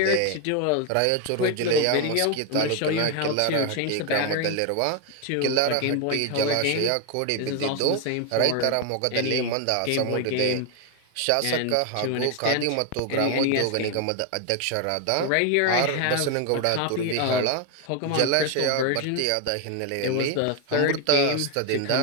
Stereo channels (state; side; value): different; both; correlation 0.01